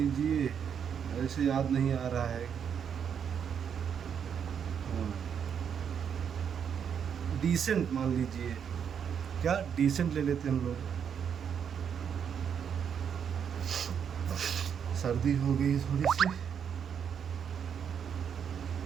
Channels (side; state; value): left; quieter; 7.7 dB